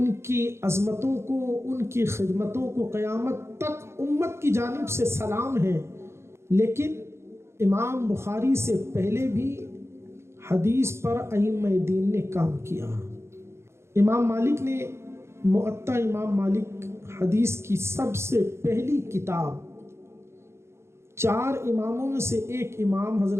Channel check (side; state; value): left; late; 0.13 ms